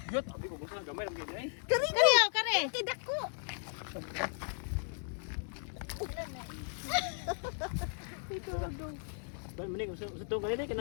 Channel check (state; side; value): silent; right; 54 dB below the other